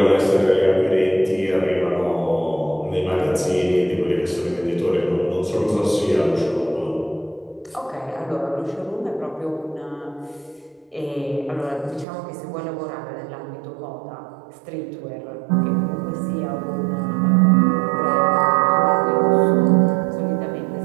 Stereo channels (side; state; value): left; drops out; at 12.1 s